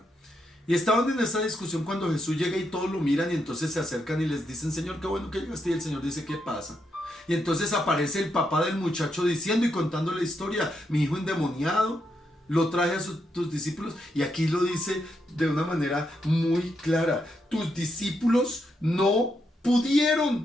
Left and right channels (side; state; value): both; normal; correlation 0.81